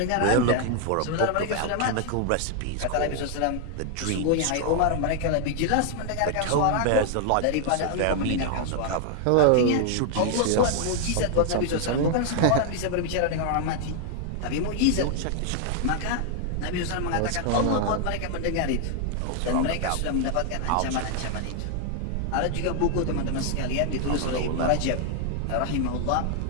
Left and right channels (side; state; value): both; different; correlation 0.00